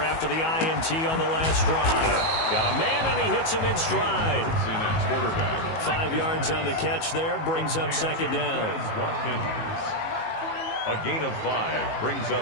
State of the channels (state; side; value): late; right; 18 ms